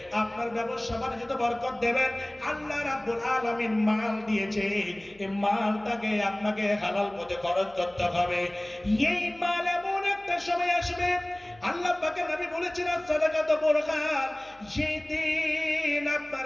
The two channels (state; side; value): noise; left; hum, 28 dB below the sound